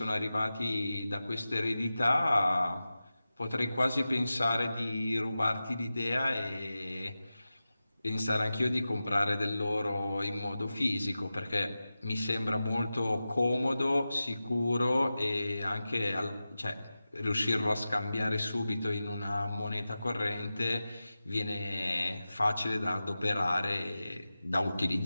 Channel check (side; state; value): both; inverted; correlation -0.94